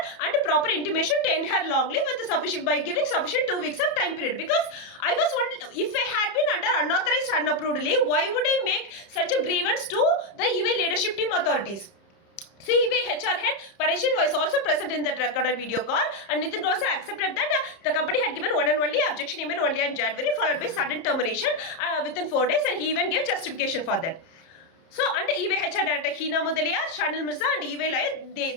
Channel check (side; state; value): right; late; 30 ms